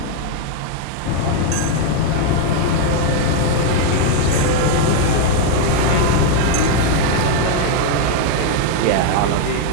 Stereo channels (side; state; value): both; different; correlation 0.00